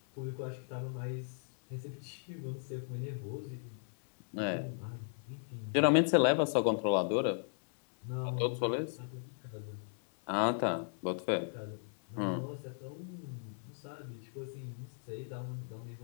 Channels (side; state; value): right; silent; digital silence